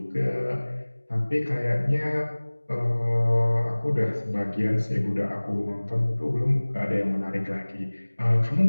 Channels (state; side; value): inverted; both; correlation -1.00